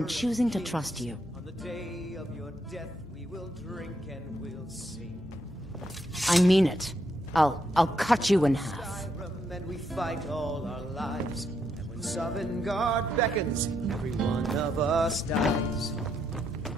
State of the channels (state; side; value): noise; left; hum, 20 dB below the sound